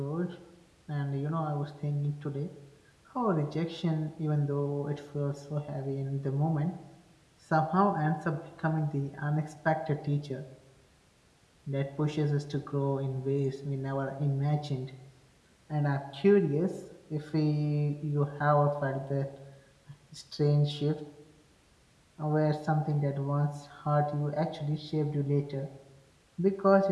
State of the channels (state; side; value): identical; both; correlation 1.00